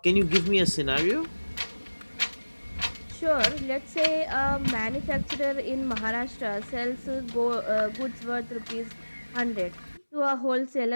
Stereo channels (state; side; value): inverted; both; correlation -1.00